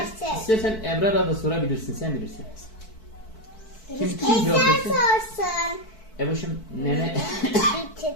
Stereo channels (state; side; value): late; right; 4.6 ms